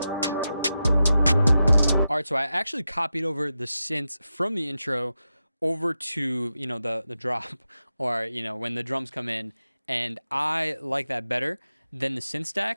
All right, so I actually copied over the synths from the intro over to, you know, the drop, or, you know, when the drums come in, and I like that better than the synth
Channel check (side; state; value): both; inverted; correlation -0.90